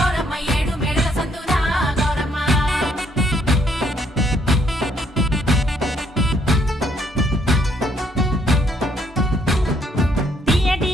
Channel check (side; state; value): both; normal; correlation 0.69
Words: ఏడు మేడల సందునా గౌరమ్మ తీయటి